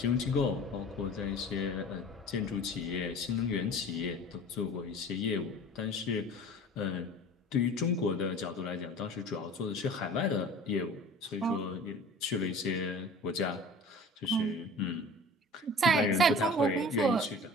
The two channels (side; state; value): both; normal; correlation 0.42